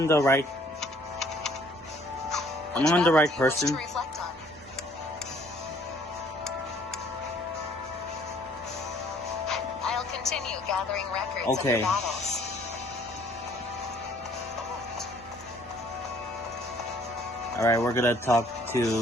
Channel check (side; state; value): both; normal; correlation 0.60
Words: the right... Am I on the right person? I'll continue gathering records Okay. of the battles. Alright, we're gonna talk to